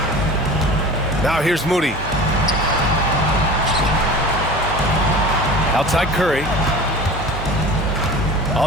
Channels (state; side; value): normal; both; correlation 0.37